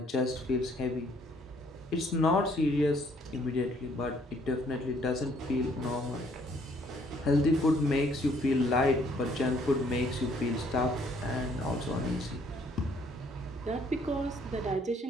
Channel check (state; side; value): normal; both; correlation 0.64